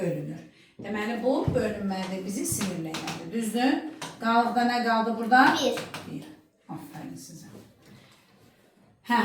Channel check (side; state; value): both; identical; correlation 1.00